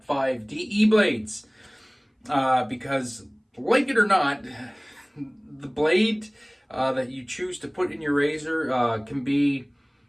5 DE blades. Because, like it or not, the blade that you choose to put in your razor can be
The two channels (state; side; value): identical; both; correlation 1.00